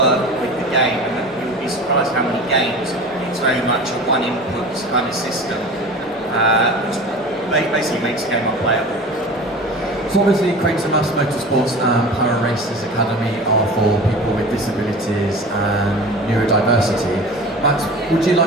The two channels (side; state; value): both; normal; correlation 0.36